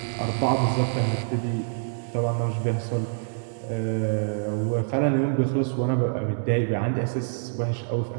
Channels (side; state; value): left; silent; 61 dB below the other